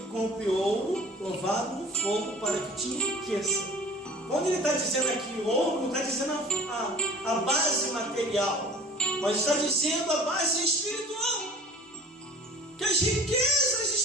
compre ouro provado no fogo para que te enriqueça. Quando ele está dizendo aqui ouro, não está dizendo a base material, mas está dizendo a base espiritual. Que as riquezas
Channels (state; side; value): normal; both; correlation 0.45